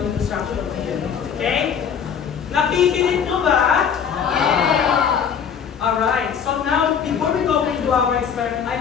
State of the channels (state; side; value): quieter; right; 7.5 dB